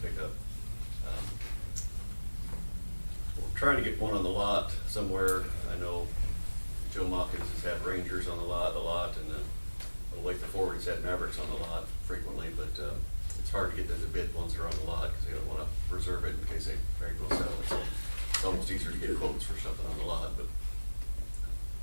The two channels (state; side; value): inverted; both; correlation -1.00